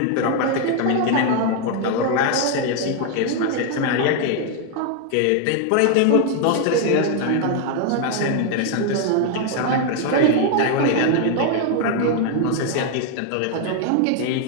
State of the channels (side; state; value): both; different; correlation 0.00